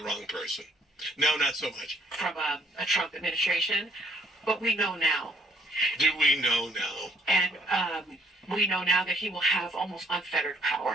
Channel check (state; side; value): normal; both; correlation 0.63